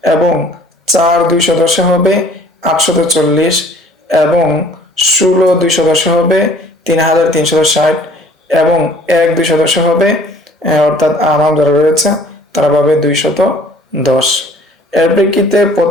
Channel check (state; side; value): normal; both; correlation 0.53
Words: এবং 4 210-এ হবে 840 এবং 16 210-এ হবে 3360 এবং 1 210-এ হবে, অর্থাৎ আমাম যারা রয়েছে তারা পাবে 210। এর প্রেক্ষিতে